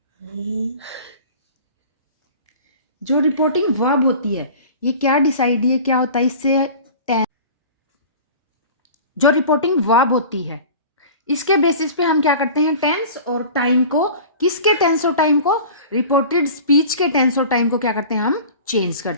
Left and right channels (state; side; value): inverted; both; correlation -0.40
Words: जो रिपोर्टिंग वर्ब होती है ये क्या डिसाइड, ये क्या होता है इससे, जो रिपोर्टिंग वर्ब होती है इसके बेसिस पे हम क्या करते हैं, टेंस और टाइम को, किसके टेंस और टाइम को, रिपोर्टेड स्पीच के टेंस और टाइम को क्या करते हैं, हम चेंज